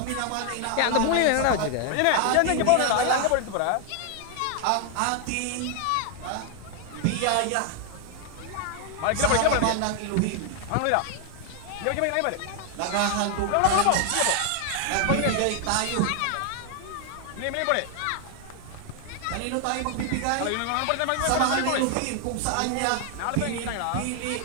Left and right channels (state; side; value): different; both; correlation 0.00